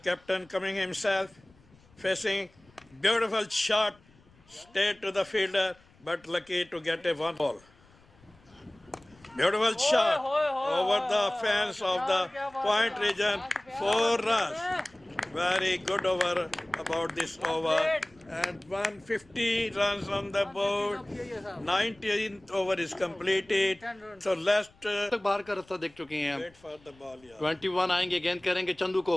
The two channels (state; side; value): noise; left; rumble, 29 dB below the sound